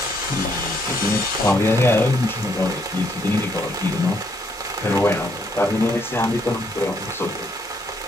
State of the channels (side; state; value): both; normal; correlation 0.72